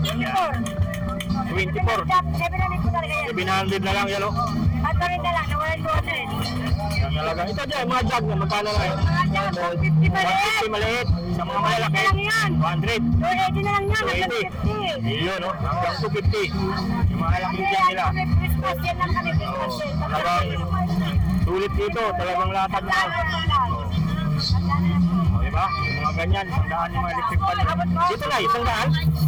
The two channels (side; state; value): both; identical; correlation 1.00